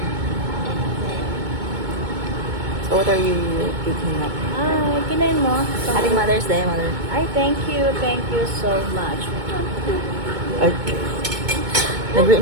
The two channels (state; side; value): late; left; 2.2 ms